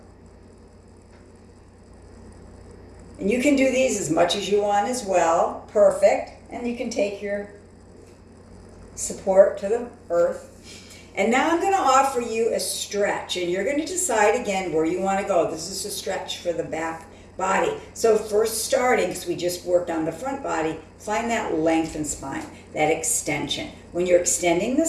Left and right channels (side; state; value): both; identical; correlation 1.00